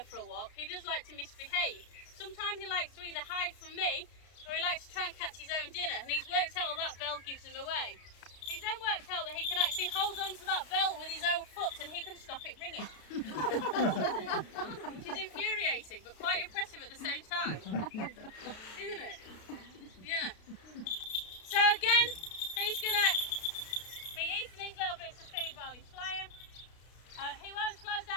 for a walk, he does like to misbehave. Sometimes he likes to either hide from me or he likes to try and catch his own dinner, and he's worked out that bell gives him away. He's then worked out that he can actually hold on to that bell with his own foot and he can stop it ringing. Which is infuriating but quite impressive at the same time. Isn't it? Yeah. So again, he's going to be eating these little bits of food while he's flying. He won't slow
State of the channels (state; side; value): late; right; 33 ms